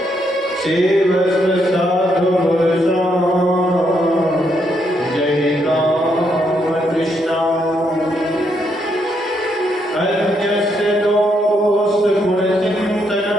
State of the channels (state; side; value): normal; both; correlation 0.76